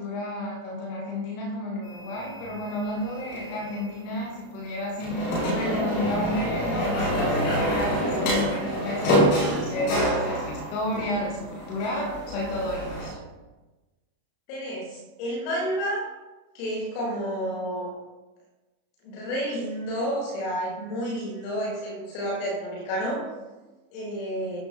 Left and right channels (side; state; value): right; late; 34 ms